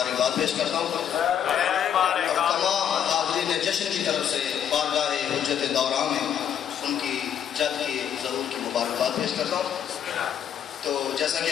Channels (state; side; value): quieter; right; 9.1 dB